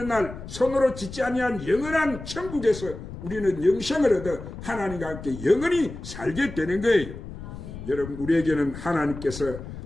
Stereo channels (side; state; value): left; noise; rumble, 11 dB below the sound